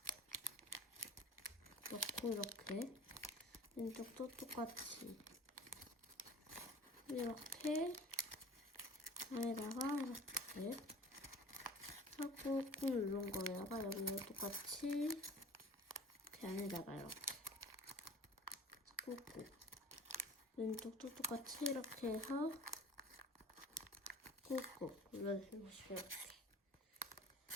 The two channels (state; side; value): normal; both; correlation 0.43